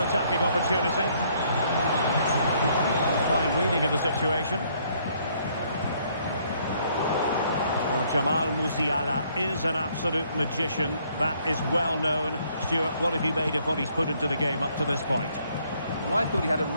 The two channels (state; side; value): inverted; both; correlation -0.66